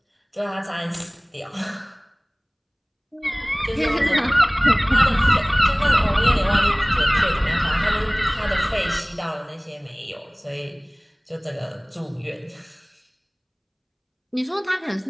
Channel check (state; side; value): identical; both; correlation 1.00